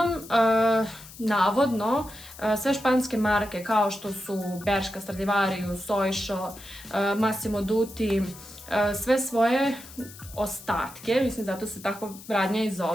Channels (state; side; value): noise; left; hiss, 18 dB below the sound